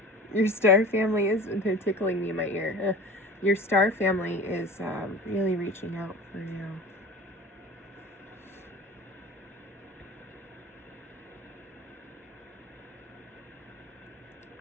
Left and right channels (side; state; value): both; normal; correlation 0.38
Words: Your star family is tickling me in my ear. Your star family is really reaching out for you.